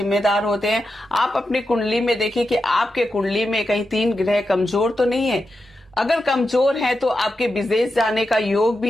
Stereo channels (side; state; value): both; normal; correlation 0.89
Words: होते हैं। आप अपनी कुंडली में देखिए कि आपके कुंडली में कहीं 3 ग्रह कमजोर तो नहीं है। अगर कमजोर है तो आपके विदेश जाने का योग